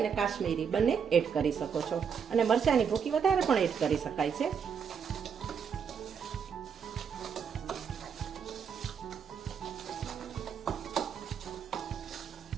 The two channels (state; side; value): quieter; left; 7.0 dB